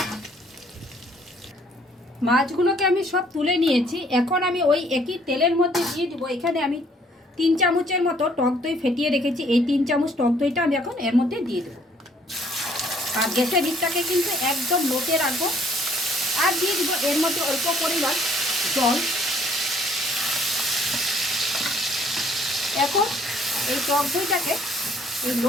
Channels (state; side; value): normal; both; correlation 0.62